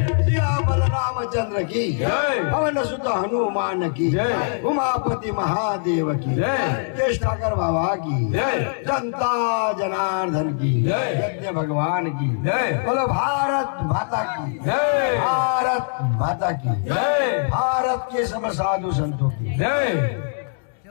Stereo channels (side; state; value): right; silent; digital silence